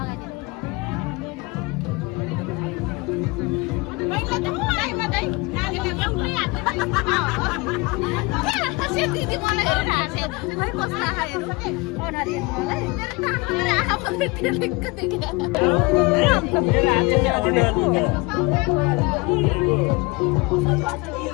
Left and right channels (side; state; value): right; quieter; 25.9 dB